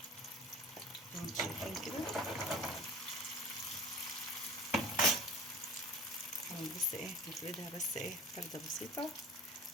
زي ما انتم شايفين كده. بس ايه نفردها بس ايه فردة بسيطة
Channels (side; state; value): both; normal; correlation 0.42